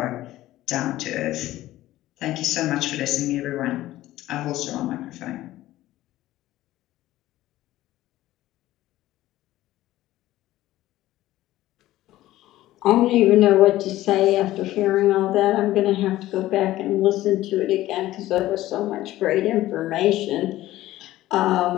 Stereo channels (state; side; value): quieter; right; 15.5 dB